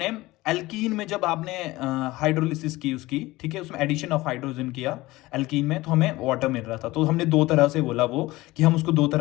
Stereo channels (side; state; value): right; quieter; 19.3 dB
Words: एल्कीन में जब आपने हाइड्रोलिसिस की उसकी, ठीक है, उसमें एडिशन ऑफ हाइड्रोजन किया एल्कीन में, तो हमें वाटर मिल रहा था। तो हमने दो तरह से बोला वो कि हम उसको दो